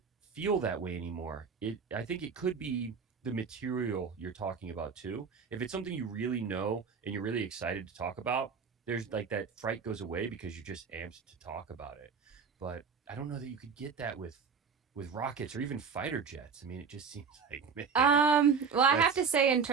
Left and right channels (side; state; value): left; quieter; 5.9 dB